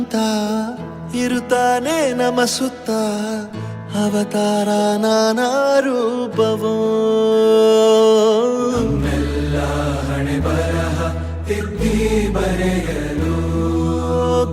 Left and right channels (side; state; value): both; identical; correlation 1.00